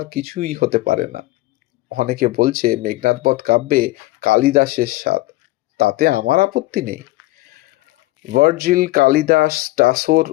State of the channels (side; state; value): right; quieter; 19.0 dB